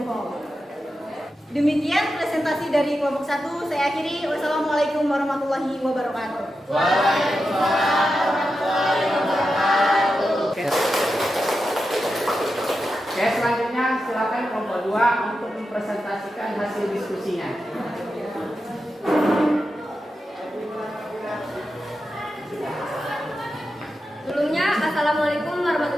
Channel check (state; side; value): normal; both; correlation 0.89